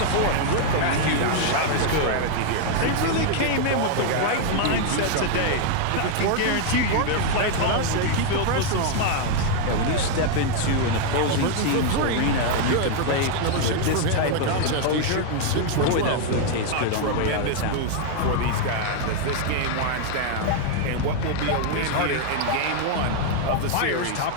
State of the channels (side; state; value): both; different; correlation 0.00